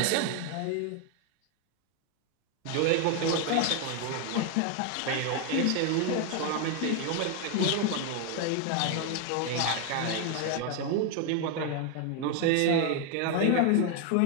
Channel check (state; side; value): different; both; correlation 0.01